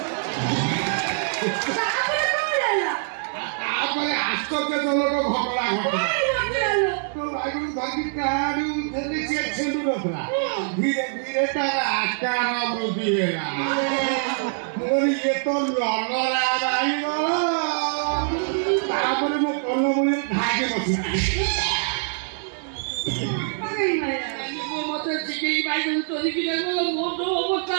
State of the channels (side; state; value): left; silent; digital silence